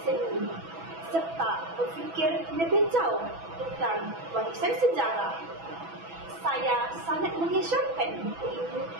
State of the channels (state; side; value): late; left; 6.1 ms